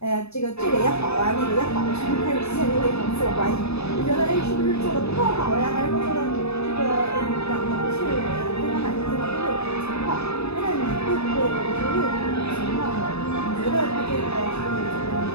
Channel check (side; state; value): right; late; 0.79 ms